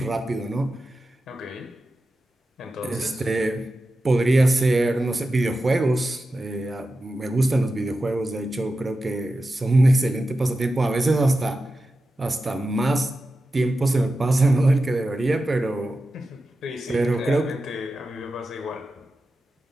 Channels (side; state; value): both; normal; correlation 0.92